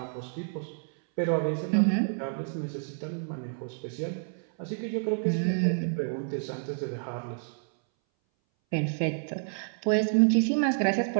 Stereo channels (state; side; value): silent; left; 58 dB below the other